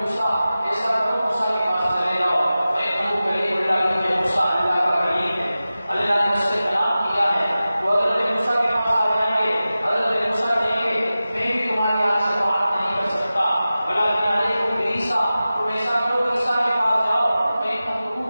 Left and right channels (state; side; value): inverted; both; correlation -0.95